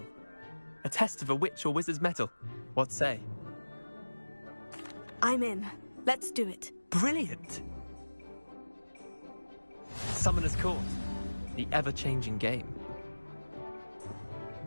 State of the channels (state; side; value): inverted; both; correlation -1.00